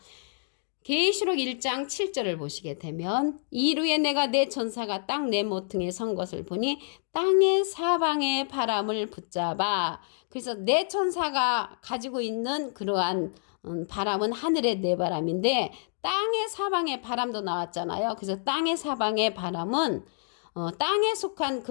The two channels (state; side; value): silent; right; digital silence